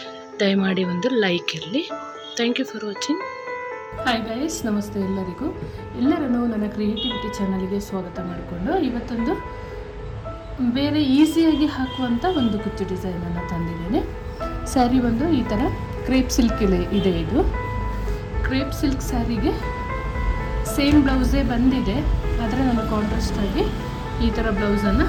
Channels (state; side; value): identical; both; correlation 1.00